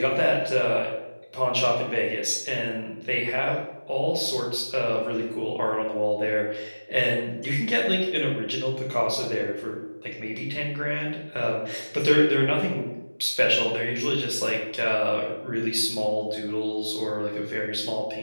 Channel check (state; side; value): inverted; both; correlation -1.00